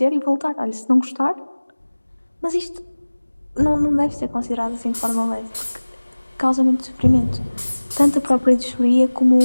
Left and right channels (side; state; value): both; inverted; correlation -1.00